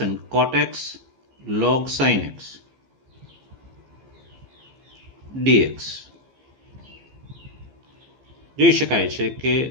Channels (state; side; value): late; left; 15 ms